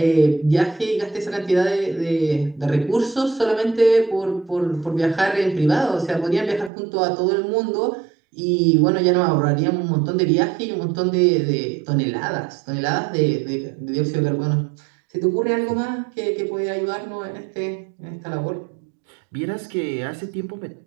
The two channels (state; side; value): drops out; left; at 6.7 s